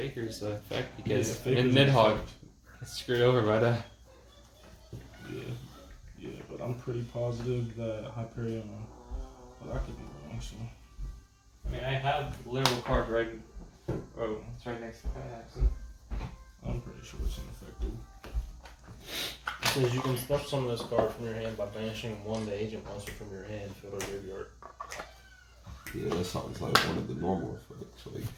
the effect because Faker's in an Nidhogg effect. gets screwed over by that. Yeah, but I'm pretty positive that Hyperion. But I could be wrong. So I mean, I have the literal card right. Oh, it's right next to that actually. I'm pretty sure it's ineffective. It says you can special summon this card from your hand by banishing one the agent monster from your hand, field or graveyard. Yeah, that sounds like one of the normal effects. Like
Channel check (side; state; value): both; identical; correlation 1.00